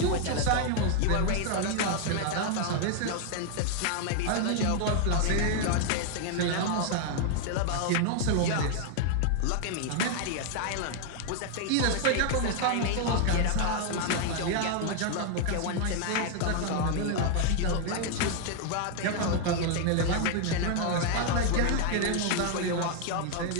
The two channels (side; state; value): both; different; correlation 0.00